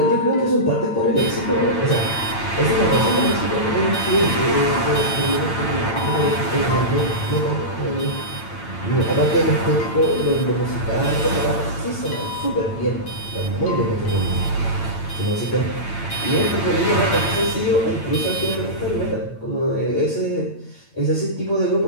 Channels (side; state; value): right; late; 8.9 ms